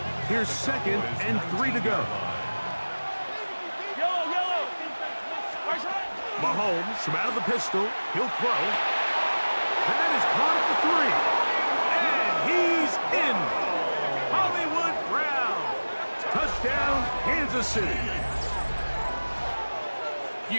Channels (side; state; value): both; inverted; correlation -1.00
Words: Here's 2nd and 3 to go. Mahomes from out of the pistol. He'll throw. That is caught at the 3. And he's in. Hollywood Brown. Touchdown, Kansas City.